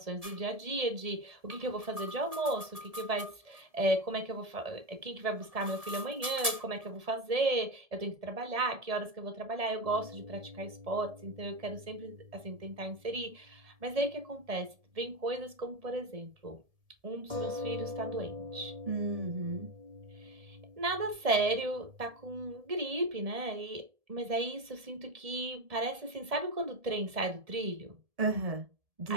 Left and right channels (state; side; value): late; left; 1.7 ms